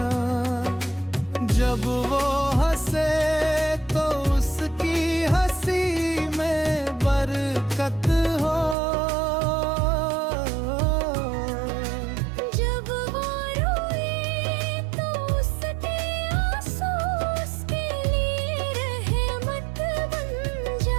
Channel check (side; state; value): left; drops out; at 8.8 s